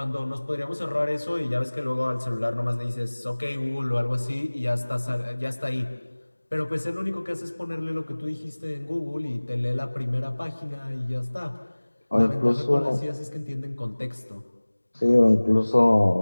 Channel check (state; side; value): inverted; both; correlation -1.00